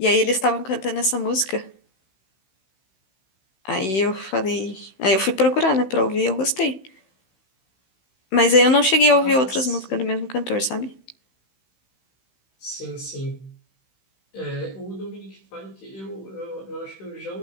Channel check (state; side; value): late; right; 16 ms